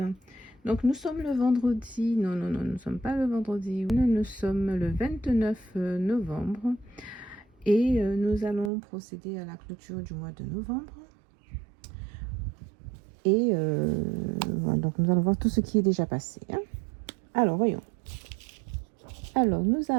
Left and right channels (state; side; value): drops out; left; at 8.7 s